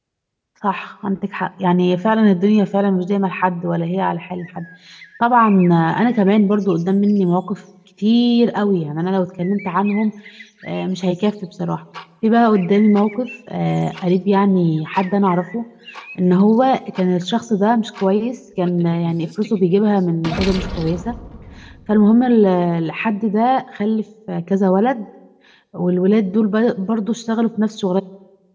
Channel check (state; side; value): identical; both; correlation 1.00